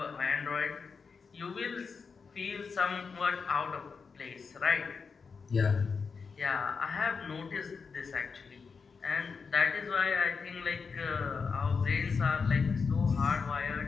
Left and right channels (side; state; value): right; quieter; 5.3 dB